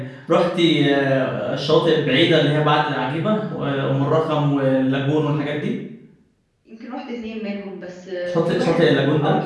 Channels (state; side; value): identical; both; correlation 1.00